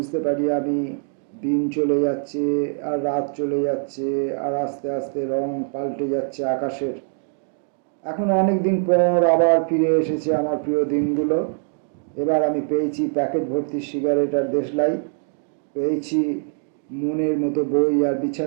পারি আমি, দিন চলে যাচ্ছে আর রাত চলে যাচ্ছে, আর আস্তে আস্তে রং পাল্টে যাচ্ছে আকাশের। এখন অনেক দিন পর আবার ফিরে এসেছে আমার প্রিয় দিনগুলো। এবার আমি পেয়েছি প্যাকেট ভর্তি সিগারেট আর দেশলাই, পেয়েছি মনের মতো বই আর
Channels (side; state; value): left; silent; 58 dB below the other